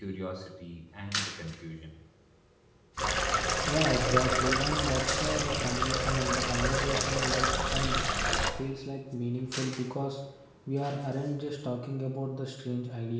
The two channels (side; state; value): both; identical; correlation 1.00